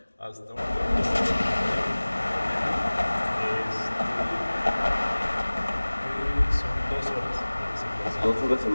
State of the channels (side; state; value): both; inverted; correlation -1.00